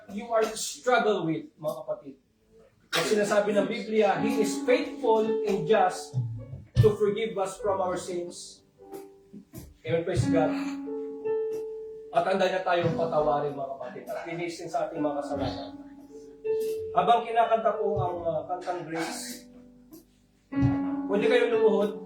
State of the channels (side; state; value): both; identical; correlation 1.00